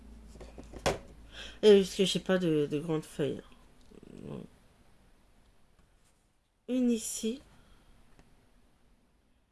Et parce que j'ai pas de grandes feuilles. Une ici.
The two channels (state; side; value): identical; both; correlation 1.00